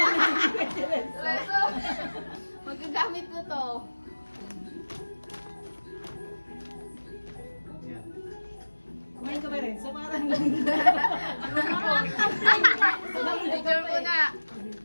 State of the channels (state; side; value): inverted; both; correlation -1.00